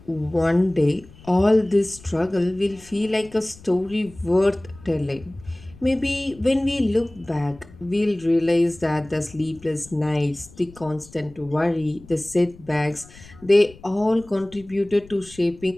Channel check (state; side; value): noise; left; rumble, 22 dB below the sound